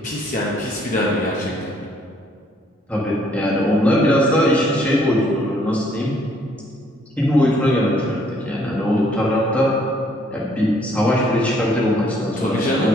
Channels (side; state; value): both; normal; correlation 0.65